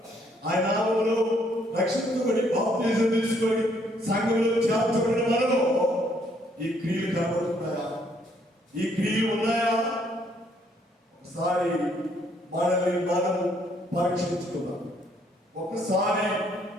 ఆయన నామములో రక్షించబడి బాప్తిజం తీసుకొని సంఘంలో చేర్చబడిన మనలో ఈ క్రియలు కనబడుతున్నాయా? ఈ క్రియలు ఉన్నాయా? ఒకసారి మనల్ని మనం పరీక్షించుకుందాం. ఒకసారి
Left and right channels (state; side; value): normal; both; correlation 0.68